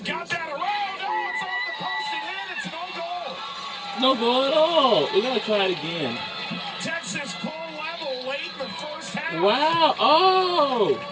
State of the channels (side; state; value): both; identical; correlation 1.00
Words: got that around. Oh, it's No goal at all. We're going to try it again. Texas pull level late in the first half. Wow. Oh.